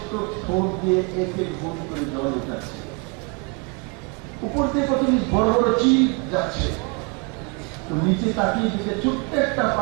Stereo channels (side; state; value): left; quieter; 31.6 dB